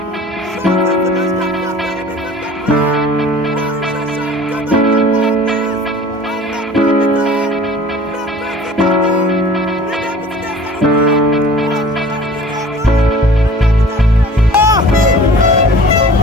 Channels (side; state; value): both; normal; correlation 0.45